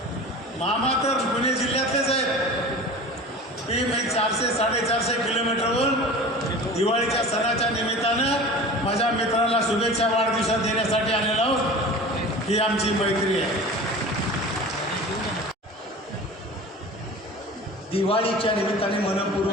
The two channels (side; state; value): both; normal; correlation 0.37